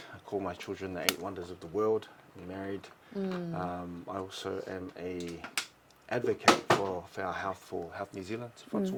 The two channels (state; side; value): identical; both; correlation 1.00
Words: I call my children the 8 wonders of the world. I'm married. I also am a advocate for our health, for Health New Zealand.